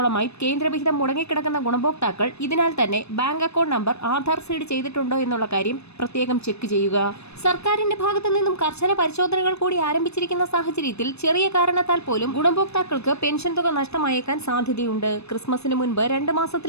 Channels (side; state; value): right; late; 0.80 ms